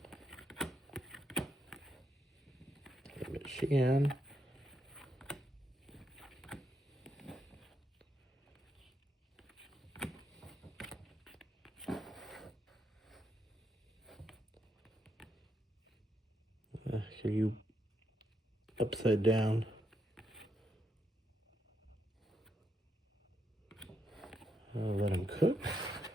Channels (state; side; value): normal; both; correlation 0.80